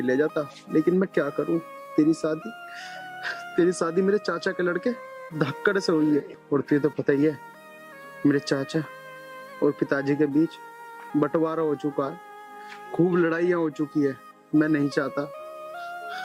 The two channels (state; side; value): identical; both; correlation 1.00